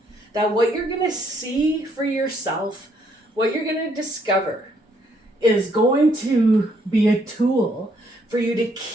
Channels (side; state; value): both; normal; correlation 0.70